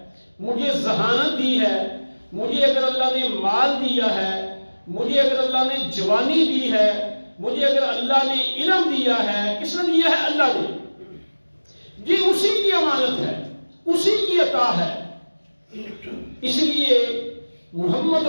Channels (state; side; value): inverted; both; correlation -1.00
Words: مجھے ذہانت دی ہے، مجھے اگر اللہ نے مال دیا ہے، مجھے اگر اللہ نے جوانی دی ہے، مجھے اگر اللہ نے علم دیا ہے، کس نے دیا ہے؟ اللہ نے۔ جی اسی کی امانت ہے، اسی کی عطا ہے۔ اس لیے محمد